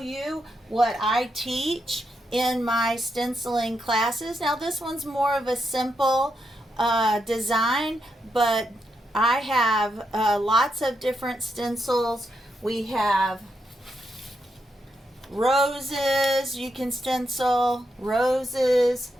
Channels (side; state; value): both; normal; correlation 0.82